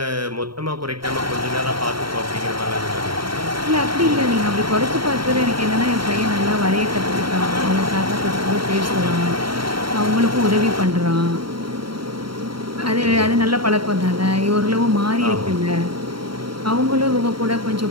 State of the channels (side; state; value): left; late; 0.73 ms